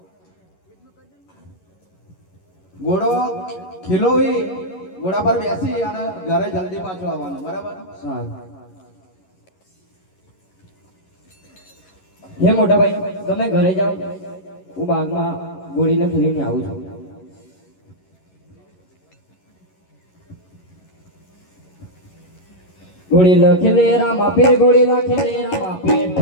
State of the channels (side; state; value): right; late; 11 ms